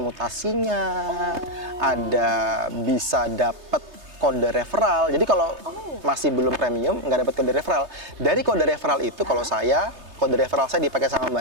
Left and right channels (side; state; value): left; late; 3.3 ms